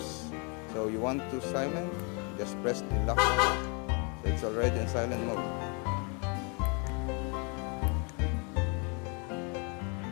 So you want to silent, just press the lock button. So it's already in silent mode.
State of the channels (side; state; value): right; quieter; 34.4 dB